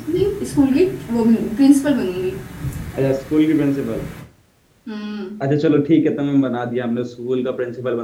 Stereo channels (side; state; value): both; identical; correlation 1.00